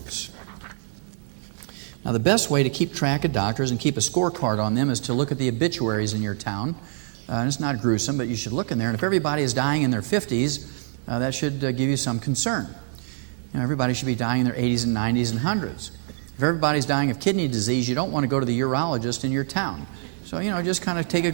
Now, the best way to keep track of doctors and keep a scorecard on them is to look at the obituaries in your town. And it's not gruesome, but you should look in there. And if everybody is dying in their 50s, that should give you some concern. Everybody should be dying in their 80s and 90s and 100s. If everybody's dying of kidney disease, you don't want to go to the urologist in your town. So, just kind of take a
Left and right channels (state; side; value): silent; left; digital silence